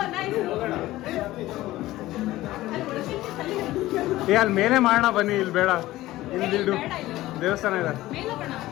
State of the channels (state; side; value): quieter; right; 16.6 dB